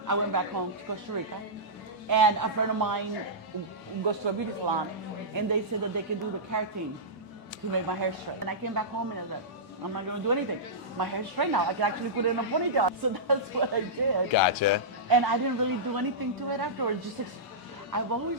went back home to Costa Rica, and a friend of mine goes to a beauty salon, and they said that they could do the keratin to make my hair straight. And I came back home and I was like, I'm not gonna do anything. My hair's straight now. I can actually put it in a ponytail. So that's what I did. Gotcha. And I didn't really do anything to it afterwards. I've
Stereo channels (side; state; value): both; normal; correlation -0.15